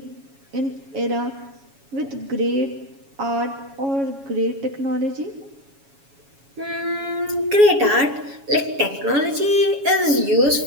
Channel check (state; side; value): late; left; 7.2 ms